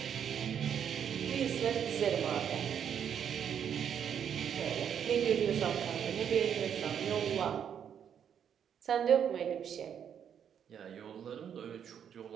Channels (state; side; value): quieter; left; 8.5 dB